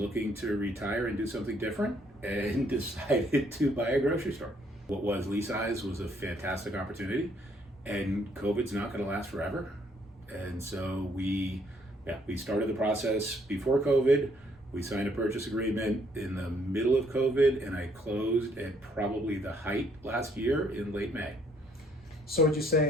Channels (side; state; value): both; normal; correlation 0.67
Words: to retire and do something different, and decided to buy a grocery store. What was Lee size was a fantastic opportunity, and COVID's not going to last forever. And so we started the process before COVID. We signed a purchase agreement in the middle of COVID, and I closed at probably the height last year in late May. So would you